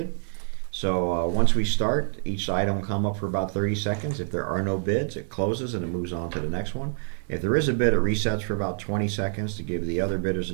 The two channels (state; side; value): silent; left; 61 dB below the other